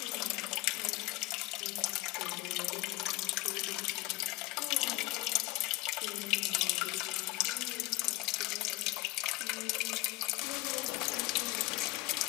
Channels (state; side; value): quieter; right; 22.2 dB